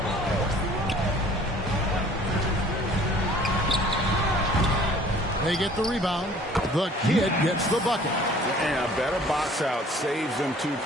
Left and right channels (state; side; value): normal; both; correlation 0.52